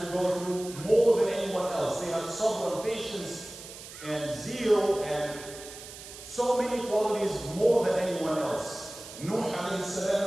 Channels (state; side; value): noise; right; hiss, 14 dB below the sound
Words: to go through more than anyone else. They had sabr and patience and zeal and so many qualities more than anyone else. Nuh alayhi